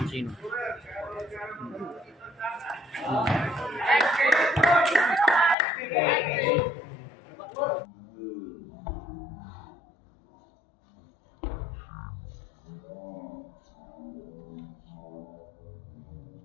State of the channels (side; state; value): right; drops out; at 5.6 s